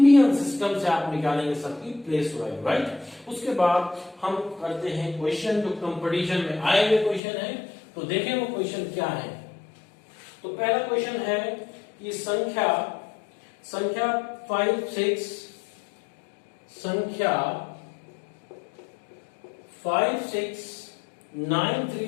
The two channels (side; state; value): right; drops out; at 7.2 s